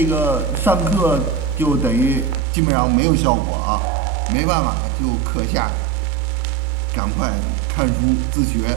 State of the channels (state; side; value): drops out; left; at 2.4 s